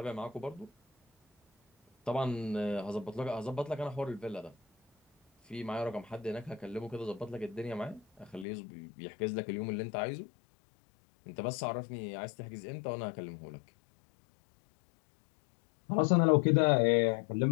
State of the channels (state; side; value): drops out; right; at 8.5 s